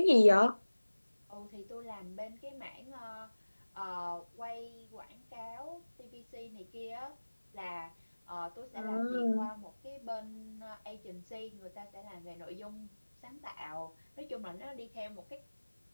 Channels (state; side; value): inverted; both; correlation -1.00